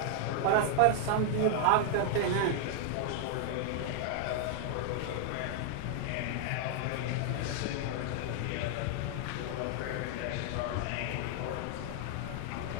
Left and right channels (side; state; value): both; different; correlation 0.00